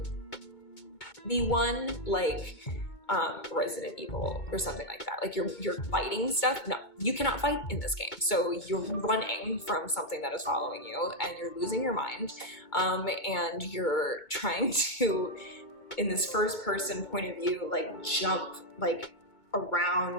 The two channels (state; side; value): late; right; 2.2 ms